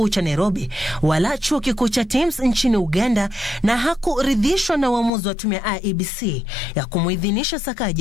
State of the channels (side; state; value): right; drops out; at 5.1 s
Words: cha Nairobi wala Chuo Kikuu cha Thames nchini Uganda na hakuridhishwa na uamuzi wa tume ya IEBC ya kumuidhinisha